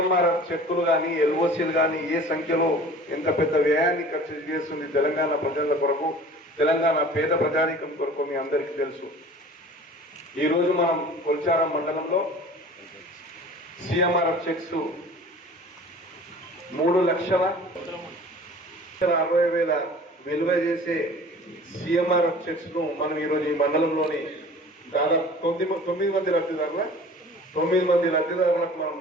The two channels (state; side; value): normal; both; correlation 0.44